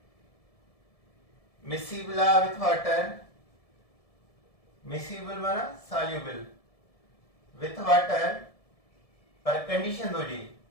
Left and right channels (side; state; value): right; late; 1.7 ms